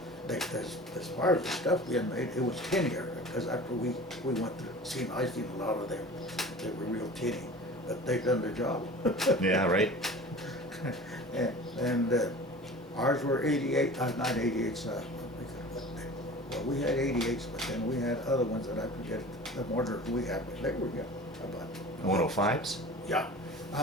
As far as the stuff being made, it was tinnier, because after we went through, I seen a lot of them, they were real tinny, but they done their job. Yeah, right. and ours were 88, not 88s, Well, we had 88s, but then we had other ones that I forget the mortar we had, but they were, yeah, about. 105s? Yeah.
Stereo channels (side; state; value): both; normal; correlation 0.39